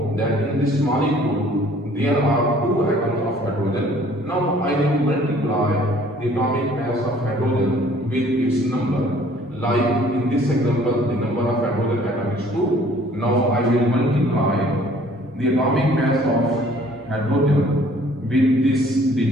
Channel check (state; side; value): normal; both; correlation 0.56